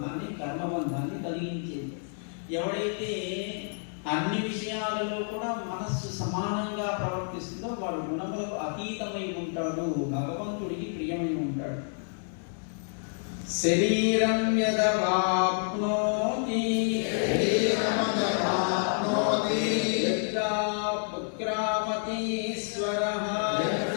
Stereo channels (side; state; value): right; silent; 59 dB below the other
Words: కర్మబంధాన్ని కలిగించేది. ఎవడైతే అన్ని విషయాలలో కూడా మనస్సు సమానంగా ప్రవర్తిస్తుందో వాడు గుణములకు అతీతమై ఉంటాడు, భగవంతుడికి ప్రియమై ఉంటాడు. శరీరం యదవాప్నోతి యత్రా పుత్రామతీశ్వరః